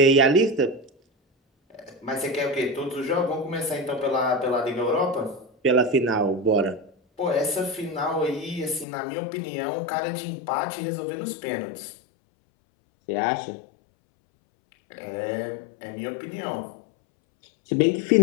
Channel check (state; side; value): drops out; right; at 8.8 s